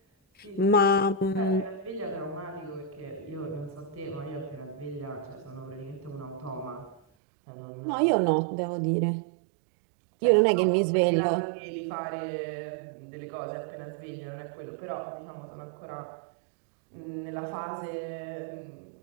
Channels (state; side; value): drops out; left; at 7.0 s